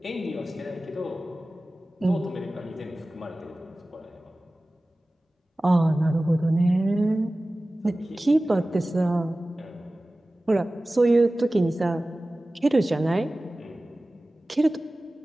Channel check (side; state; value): both; normal; correlation 0.97